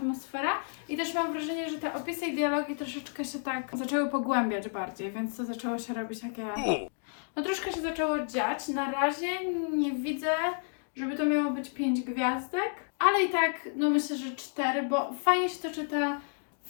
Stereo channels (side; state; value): right; silent; 57 dB below the other